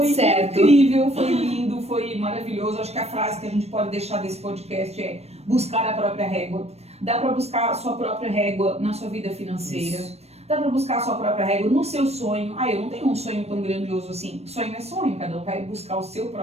certo. incrível, foi lindo, foi maravilhoso. Acho que a frase que a gente pode deixar desse podcast é buscar a própria régua. Dá para buscar a sua própria régua na sua vida financeira. Isso. Dá para buscar a sua própria régua no seu sonho. Ah, eu não tenho um sonho tão grandioso assim. Sonho é sonho, cada um vai buscar o seu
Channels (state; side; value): late; left; 0.31 ms